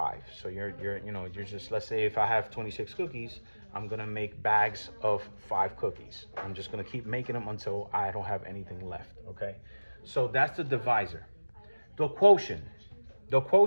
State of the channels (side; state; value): both; inverted; correlation -1.00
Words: So you're just, let's say if I have 26 cookies, I'm gonna make bags of 5 cookies. I'm just gonna keep making them until I don't have anything left, okay? So that's the divisor. The quotient